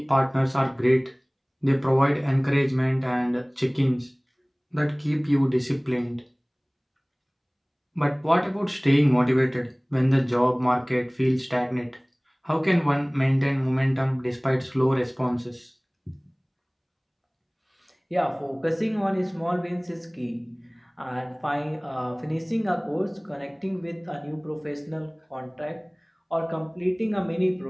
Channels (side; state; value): both; identical; correlation 1.00